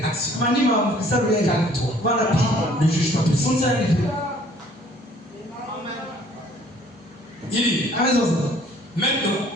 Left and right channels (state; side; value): normal; both; correlation 0.57